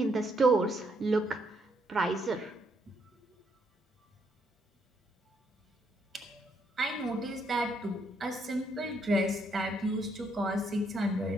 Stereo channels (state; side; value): normal; both; correlation 0.74